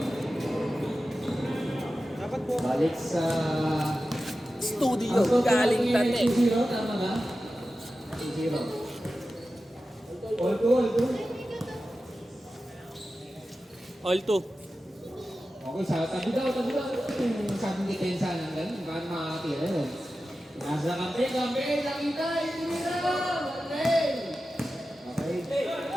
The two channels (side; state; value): both; normal; correlation 0.93